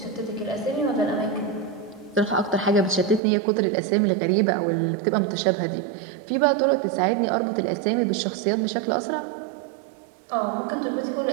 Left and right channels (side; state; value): left; drops out; at 3.2 s